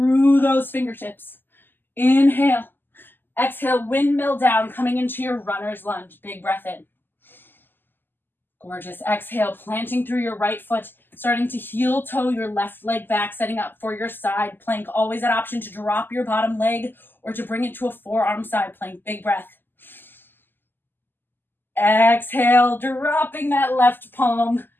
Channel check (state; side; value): late; right; 0.094 ms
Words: those fingertips. Inhale. Exhale, windmill down, coming into your runner's lunge. Big breath in. Gorgeous. Exhale, planting through your right foot, starting to heel toe your left leg back, setting up for your side plank. Always that option to drop your bottom leg or to bring it to a forearm side plank. Big breath. Exhale, dropping that left palm